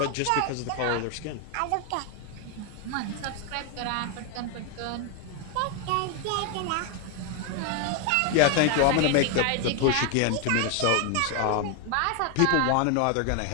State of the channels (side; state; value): both; different; correlation 0.01